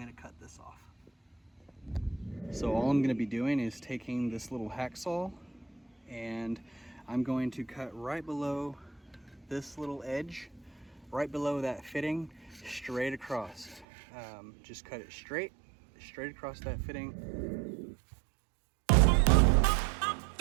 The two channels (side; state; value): left; drops out; at 13.9 s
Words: to cut this off. So all I'm going to be doing is taking this little hacksaw and I'm going to cut right below this little edge, right below that fitting, straight across. Just cut it straight across that fitting.